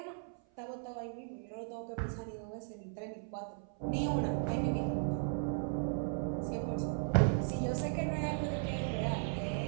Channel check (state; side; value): silent; left; 53 dB below the other